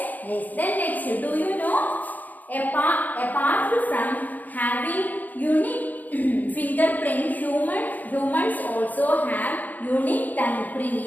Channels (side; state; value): right; late; 0.082 ms